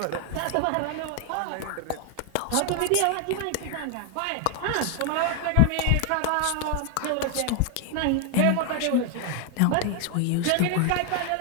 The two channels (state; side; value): different; both; correlation 0.00